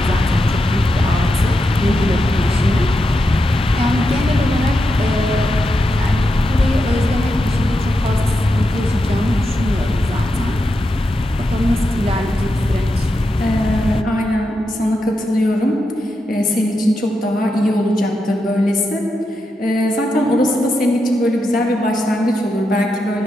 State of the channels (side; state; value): both; normal; correlation 0.86